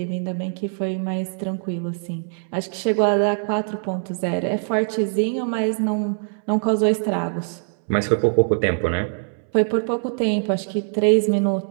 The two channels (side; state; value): left; silent; 64 dB below the other